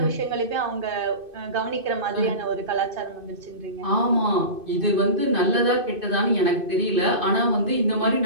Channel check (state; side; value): late; left; 2.5 ms